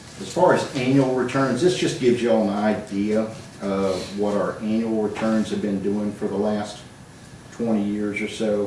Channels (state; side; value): identical; both; correlation 1.00